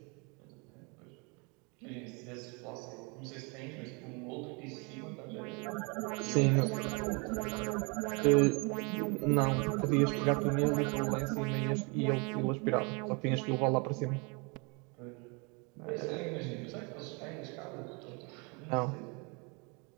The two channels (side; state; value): left; quieter; 31.5 dB